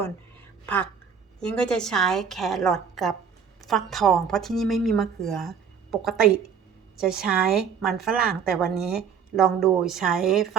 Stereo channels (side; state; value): left; quieter; 7.0 dB